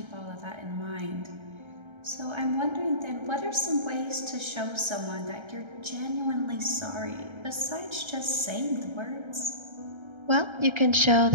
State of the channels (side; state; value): left; late; 1.3 ms